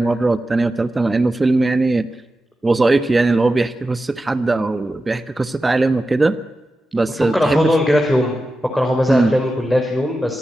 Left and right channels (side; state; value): both; normal; correlation 0.92